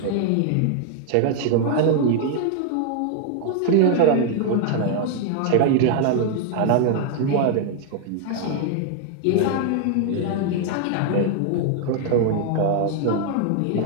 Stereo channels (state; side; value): different; both; correlation 0.00